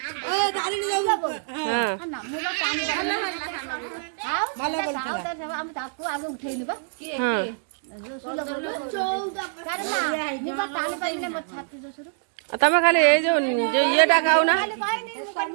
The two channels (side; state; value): left; silent; digital silence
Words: तमें खाली ये जो ये खाऊ ना